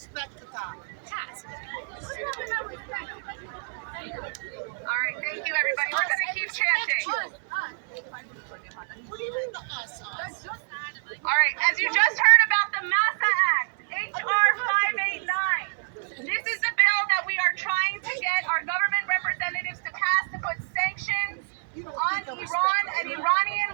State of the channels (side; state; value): left; silent; 59 dB below the other